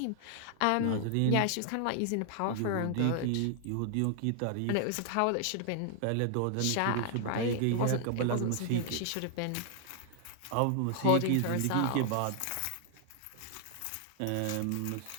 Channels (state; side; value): different; both; correlation 0.00